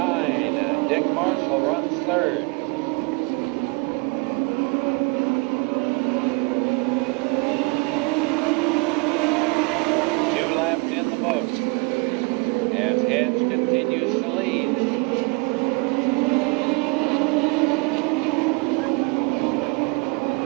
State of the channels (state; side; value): quieter; left; 29.6 dB